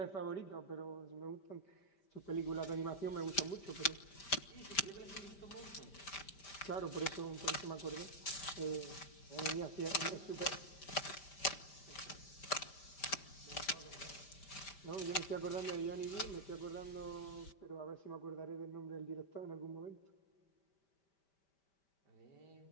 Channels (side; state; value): right; late; 5.1 ms